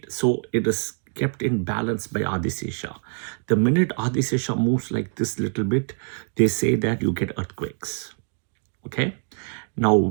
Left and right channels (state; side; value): silent; left; 56 dB below the other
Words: So it is kept in balance by Adisesha. The minute Adisesha moves like this little bit, they say that you get earthquakes. Okay. Now,